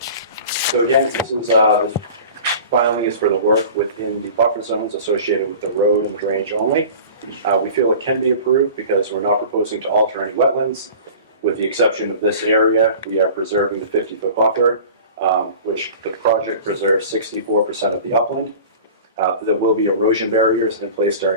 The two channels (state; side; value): inverted; both; correlation -0.40